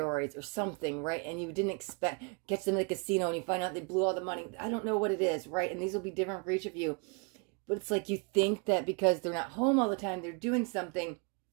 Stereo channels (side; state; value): left; quieter; 35.1 dB